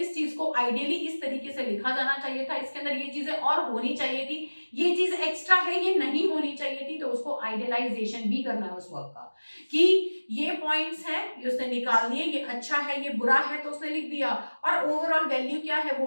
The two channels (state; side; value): inverted; both; correlation -1.00